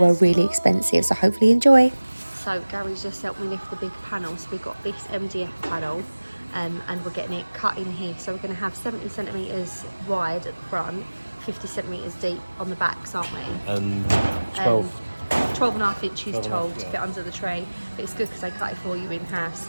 really expensive, so hopefully enjoy. So Gary's just helped me lift the big panel, so we've got this MDF panel and we're getting it cut in here. So we're going to have 70 centimetres wide at the front, 50 centimetres deep on the backs, aren't we? And 12 and a half inches tall to fit under the tray. But it's good because they cut it for you in half,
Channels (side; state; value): both; inverted; correlation -1.00